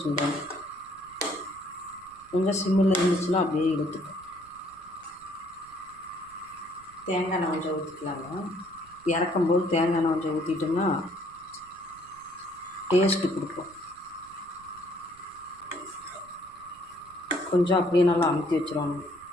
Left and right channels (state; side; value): noise; right; rumble, 26 dB below the sound